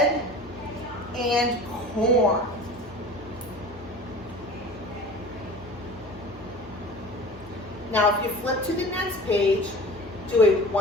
and corn. Now, if you flip to the next page, do a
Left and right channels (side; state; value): both; normal; correlation 0.38